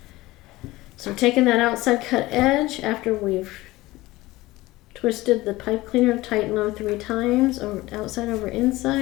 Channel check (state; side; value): quieter; right; 18.9 dB